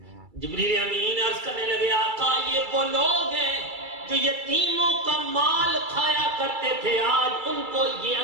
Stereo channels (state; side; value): late; left; 2.3 ms